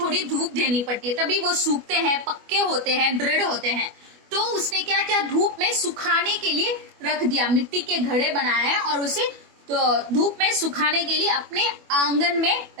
धूप देनी पड़ती है, तभी वो सूखते हैं, पक्के होते हैं, दृढ़ होते हैं। तो उसने क्या किया, धूप में सुखाने के लिए रख दिया। मिट्टी के घड़े बनाए और उसे तो धूप में सुखाने के लिए अपने आंगन में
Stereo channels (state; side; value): late; left; 25 ms